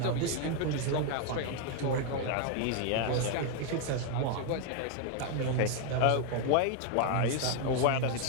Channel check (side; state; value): both; different; correlation 0.00